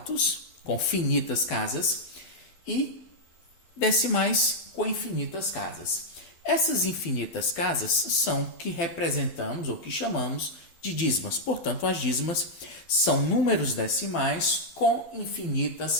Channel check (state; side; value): late; right; 12 ms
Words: com finitas casas, e decimais com infinitas casas. Essas infinitas casas são que representamos ou que chamamos de dízimas. Portanto, as dízimas são números decimais com infinitas